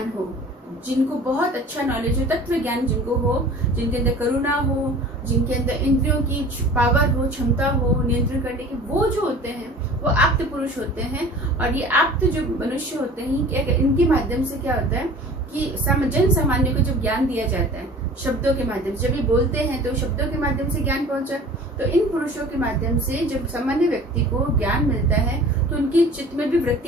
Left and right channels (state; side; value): normal; both; correlation 0.43